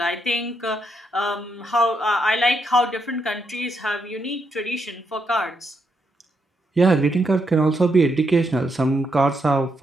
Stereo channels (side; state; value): both; normal; correlation 0.79